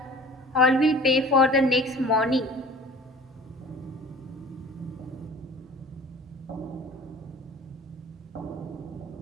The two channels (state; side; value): normal; both; correlation 0.44